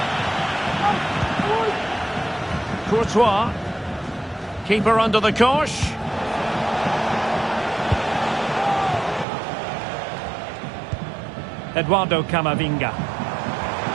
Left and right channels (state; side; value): drops out; left; at 9.2 s